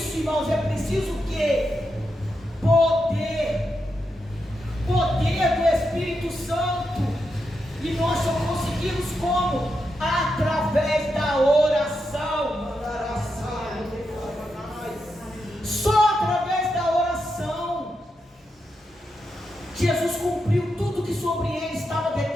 irmãos, é preciso o quê? Poder do Espírito Santo. E nós só conseguimos como? Através da oração. Só através da oração. Jesus cumpriu tudo que sobre ele estava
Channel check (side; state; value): both; normal; correlation 0.85